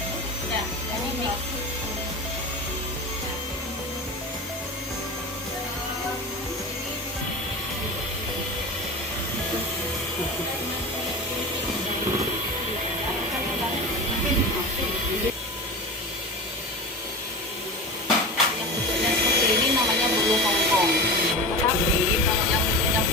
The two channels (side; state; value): both; normal; correlation 0.28